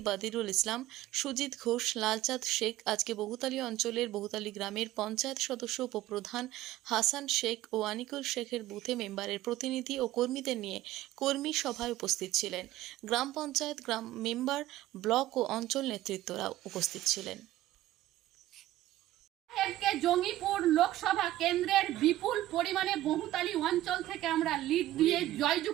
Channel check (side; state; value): left; quieter; 15.0 dB